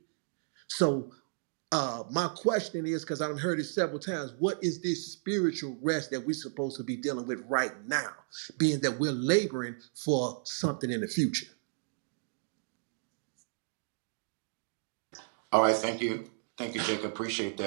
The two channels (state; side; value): silent; left; digital silence